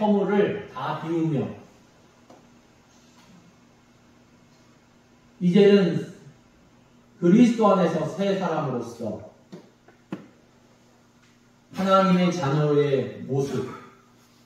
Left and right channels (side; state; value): both; identical; correlation 1.00